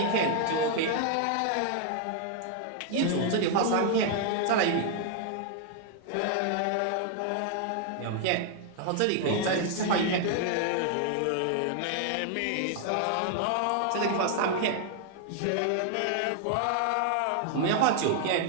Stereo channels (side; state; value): both; different; correlation 0.00